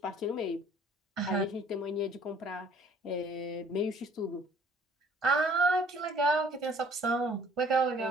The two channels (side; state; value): both; normal; correlation 0.56